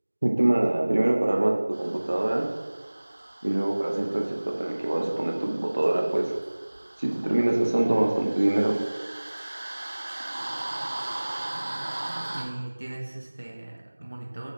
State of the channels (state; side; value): inverted; both; correlation -1.00